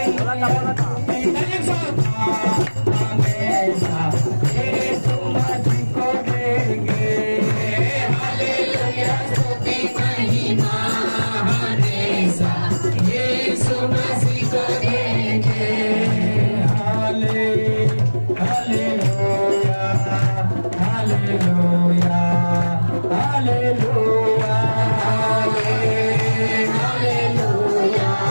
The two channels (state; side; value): inverted; both; correlation -1.00